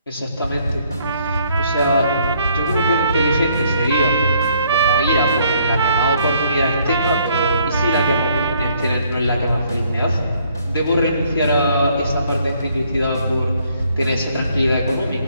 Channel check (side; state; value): both; inverted; correlation -0.67